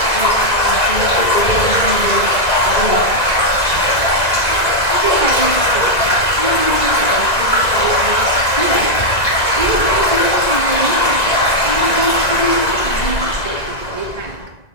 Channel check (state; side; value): late; right; 1.9 ms